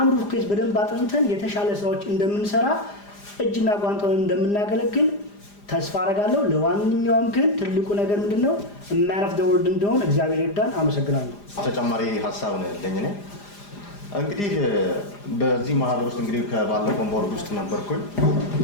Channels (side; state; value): right; late; 4.9 ms